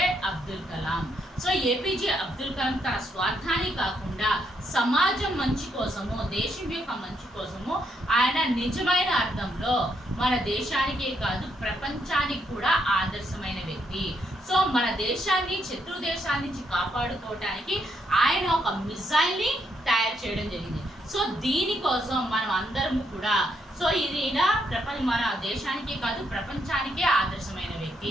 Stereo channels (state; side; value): normal; both; correlation 0.77